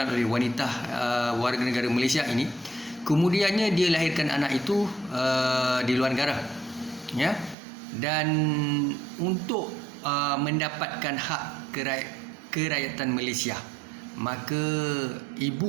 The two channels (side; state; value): left; drops out; at 7.6 s